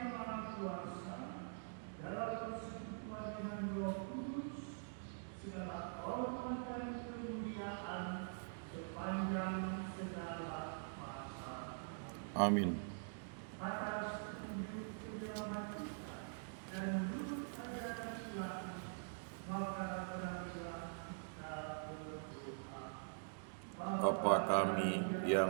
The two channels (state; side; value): silent; left; digital silence